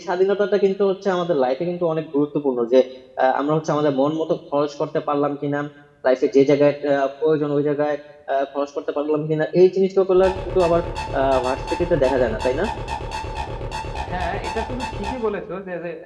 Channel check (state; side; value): identical; both; correlation 1.00